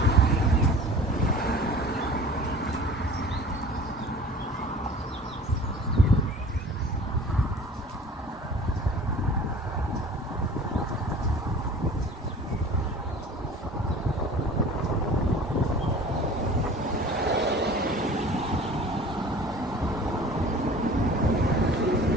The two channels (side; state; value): both; normal; correlation 0.44